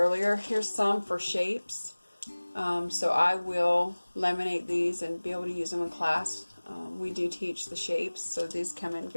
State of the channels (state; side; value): inverted; both; correlation -1.00